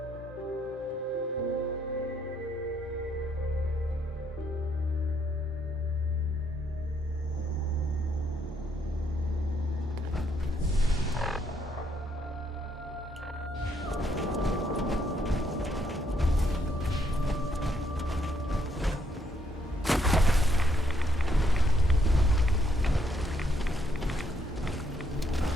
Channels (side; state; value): both; normal; correlation 0.72